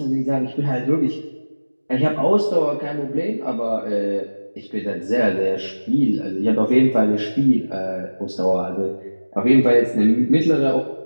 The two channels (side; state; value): both; inverted; correlation -1.00